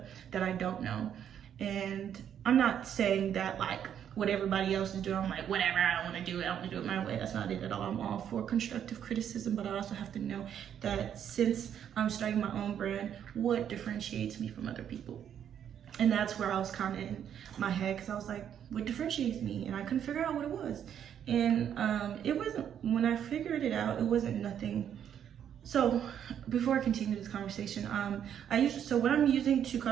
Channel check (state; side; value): quieter; left; 9.2 dB